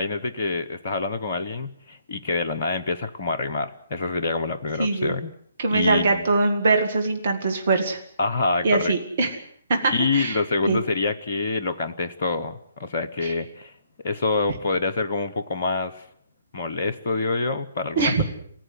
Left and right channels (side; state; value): both; inverted; correlation -0.69